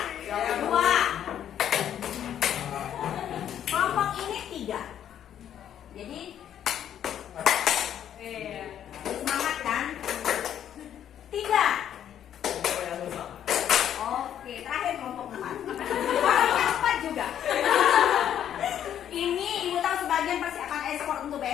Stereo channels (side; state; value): right; quieter; 10.1 dB